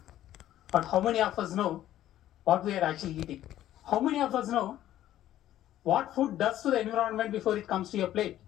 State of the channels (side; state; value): right; quieter; 12.9 dB